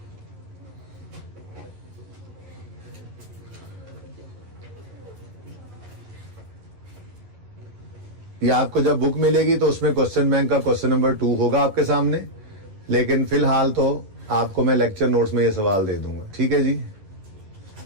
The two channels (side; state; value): left; late; 10 ms